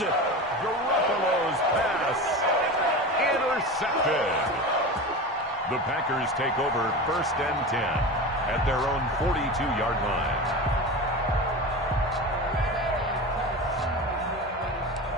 Garoppolo's pass intercepted. The Packers take over 1st and 10 at their own 42-yard line.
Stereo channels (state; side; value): normal; both; correlation 0.28